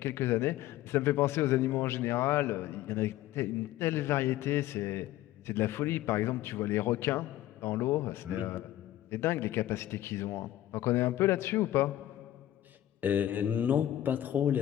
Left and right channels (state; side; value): quieter; right; 13.6 dB